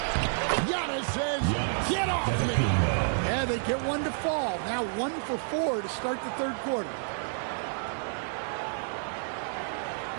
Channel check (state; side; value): silent; left; 58 dB below the other